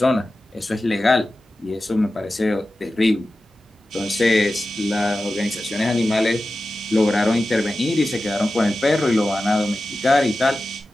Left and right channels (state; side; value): normal; both; correlation 0.94